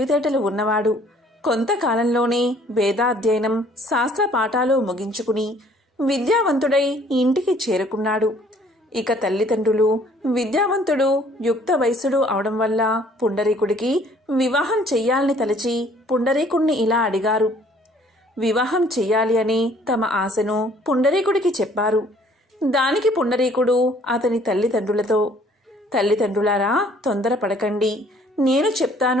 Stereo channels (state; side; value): normal; both; correlation 0.58